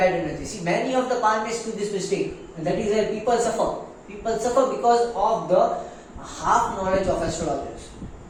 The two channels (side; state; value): both; identical; correlation 1.00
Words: energy. See, many of the palmists do this mistake, and that is where people suffer. People suffer because of the half knowledge of astrologers.